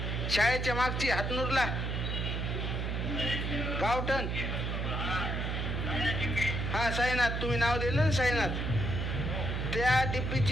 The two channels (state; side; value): noise; right; hum, 1 dB below the sound